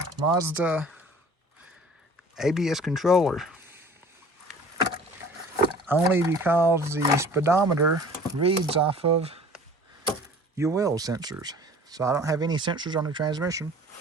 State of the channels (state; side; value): normal; both; correlation 0.47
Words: Mazda ABS controller, only because the speedometer reads off of your wheel sensors. So I don't have any sensors on the transmission.